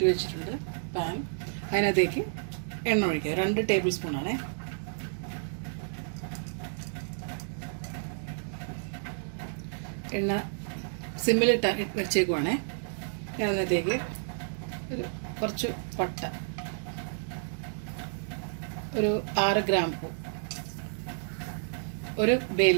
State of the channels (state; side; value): silent; left; digital silence